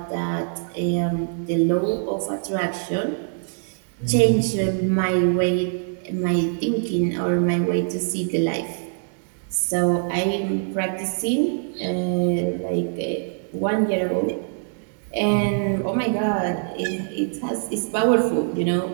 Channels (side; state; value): left; silent; digital silence